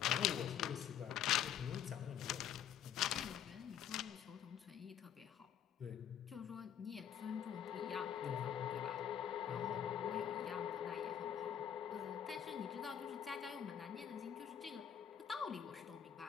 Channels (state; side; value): quieter; right; 9.4 dB